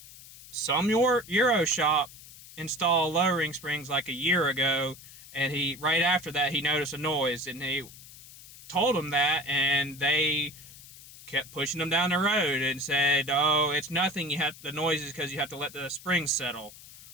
some Euro shop install lowering springs like a year ago, and right after that he noticed a noise, and he told him that, and they kept pushing him down the road and said, "Oh, it's nothing. The noise is because you have to let the springs settle."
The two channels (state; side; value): noise; left; hiss, 18 dB below the sound